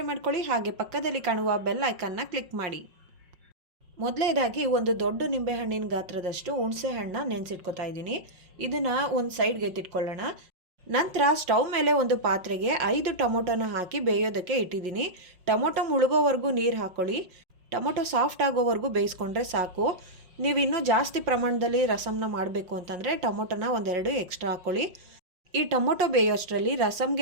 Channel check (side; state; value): left; late; 5.5 ms